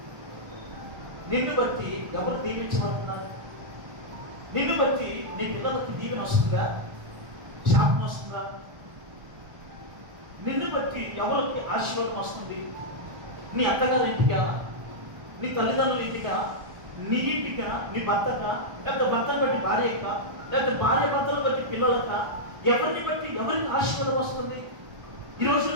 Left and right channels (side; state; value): left; late; 1.3 ms